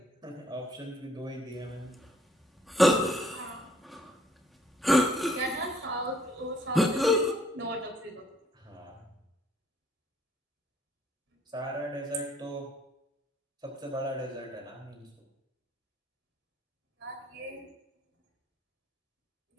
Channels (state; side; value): normal; both; correlation 0.64